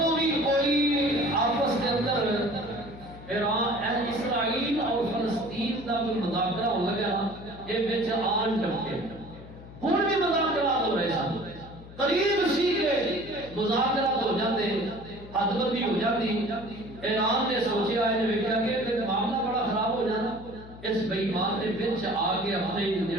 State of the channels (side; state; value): left; noise; hum, 16 dB below the sound